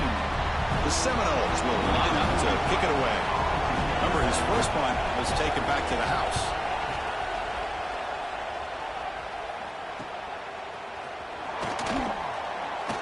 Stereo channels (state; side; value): identical; both; correlation 1.00